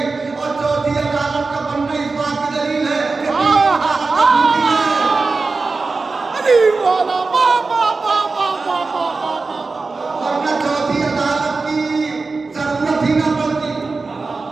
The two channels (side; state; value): left; quieter; 4.0 dB